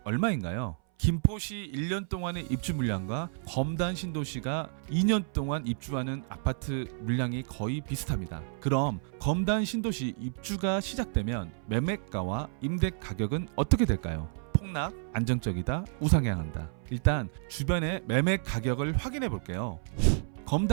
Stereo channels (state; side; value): silent; left; 57 dB below the other